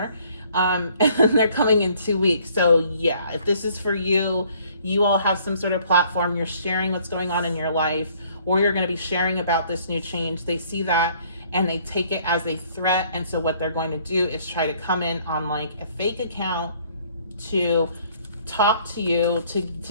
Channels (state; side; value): inverted; both; correlation -0.61